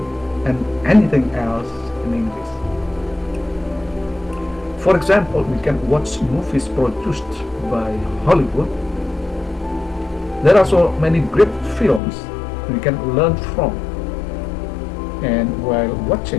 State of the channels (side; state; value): right; drops out; at 12.0 s